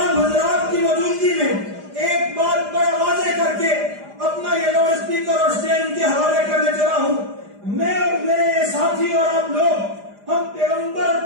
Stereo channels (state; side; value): late; left; 4.9 ms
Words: حضرات کی موجودگی میں ایک بات بڑا واضح کر کے اپنا یہ لاؤڈ اسپیکر اور اسٹینڈ کے حوالے کرنے چلا ہوں. میں اور میرے ساتھی اور آپ لوگ ہم